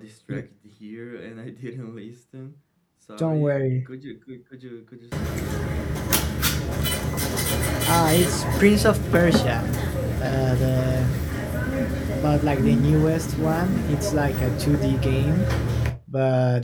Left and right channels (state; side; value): identical; both; correlation 1.00